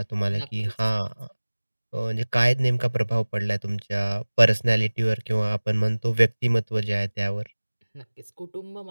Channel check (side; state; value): both; inverted; correlation -1.00